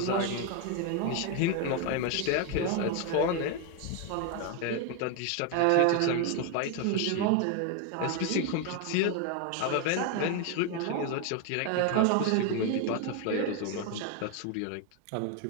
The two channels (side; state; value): both; different; correlation 0.01